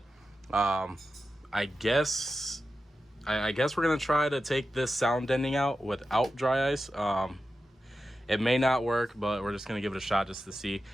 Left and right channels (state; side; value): normal; both; correlation 0.91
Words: I guess we're gonna try to take this sound deadening out without dry ice. It may not work, but we're just gonna give it a shot just to see.